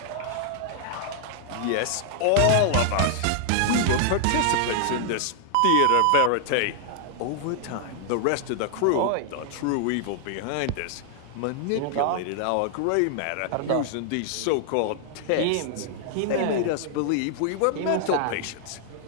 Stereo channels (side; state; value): both; different; correlation 0.00